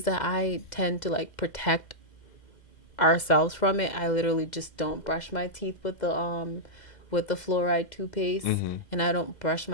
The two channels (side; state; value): right; late; 2.0 ms